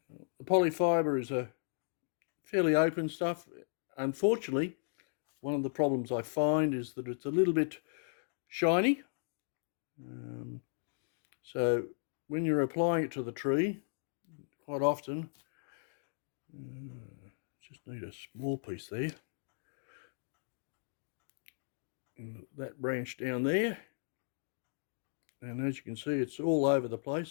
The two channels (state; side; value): silent; right; digital silence